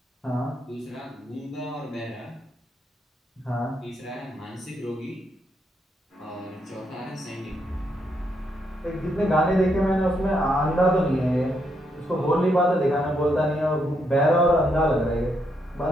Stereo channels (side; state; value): both; normal; correlation 0.78